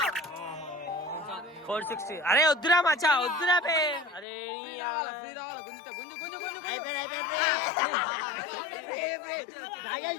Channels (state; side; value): drops out; right; at 4.2 s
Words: 460 అరే వద్దురా మచ్చా వద్దురా బే అరే